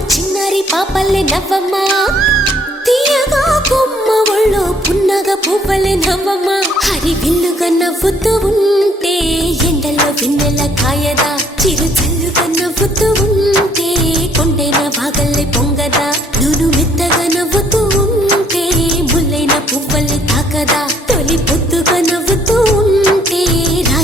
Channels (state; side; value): normal; both; correlation 0.64